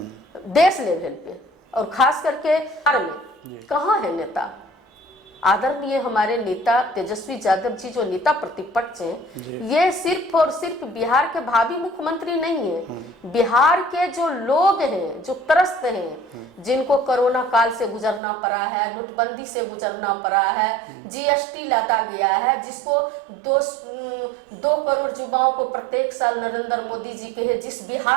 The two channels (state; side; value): drops out; left; at 18.2 s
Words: देश लेवल पे और खास करके बिहार में कहाँ है नेता। आदरणीय हमारे नेता तेजस्वी यादव जी जो नेता प्रतिपक्ष हैं, ये सिर्फ और सिर्फ बिहार के भावी मुख्यमंत्री नहीं है, बिहार के जो लोग हैं, जो त्रस्त हैं, जिनको कोरोना काल से गुजरना पड़ा है, नोटबंदी से गुजरना पड़ा है, जीएसटी लादा गया है, जिसको 2 करोड़ युवाओं को प्रत्येक साल नरेंद्र मोदी जी के है, जिस